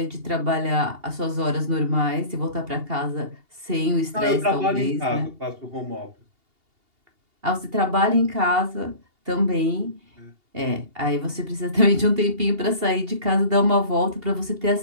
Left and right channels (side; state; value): left; late; 2.8 ms